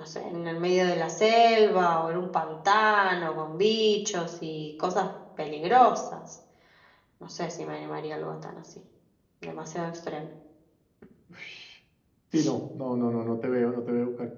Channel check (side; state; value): both; identical; correlation 1.00